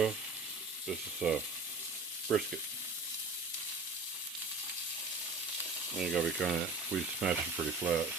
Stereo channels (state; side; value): quieter; left; 3.5 dB